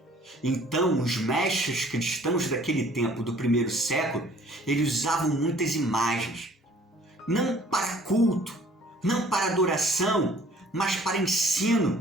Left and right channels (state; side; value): normal; both; correlation 0.55